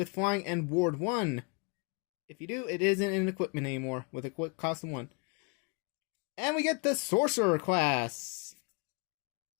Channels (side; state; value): right; quieter; 35.0 dB